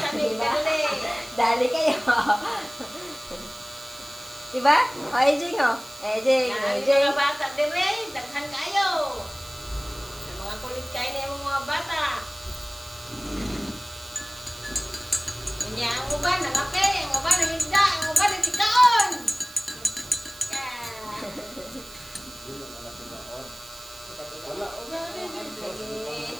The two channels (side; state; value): right; noise; hiss, 18 dB below the sound